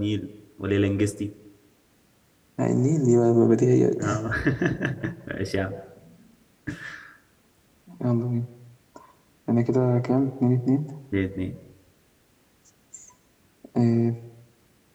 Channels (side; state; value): both; identical; correlation 1.00